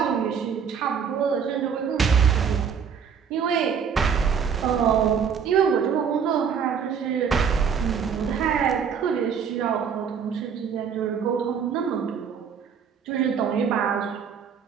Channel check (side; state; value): left; quieter; 7.0 dB